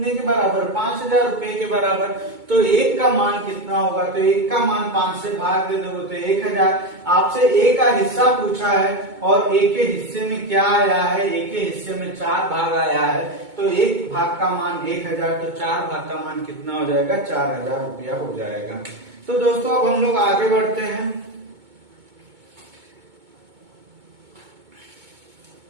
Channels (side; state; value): left; late; 2.2 ms